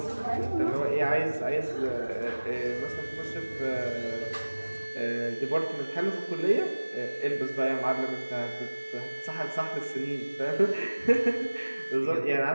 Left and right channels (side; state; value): both; inverted; correlation -1.00